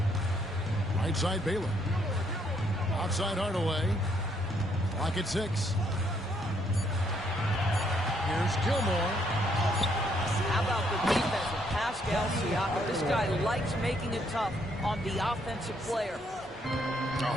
Right side Baylor. Outside Hardaway. Clock at 6. Here's Gilmore. How about the defense of Pascal Siakam? This guy likes making it tough on the offensive player.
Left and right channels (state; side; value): normal; both; correlation 0.71